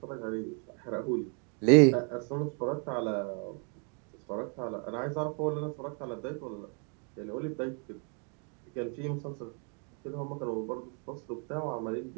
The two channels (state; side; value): quieter; left; 39.3 dB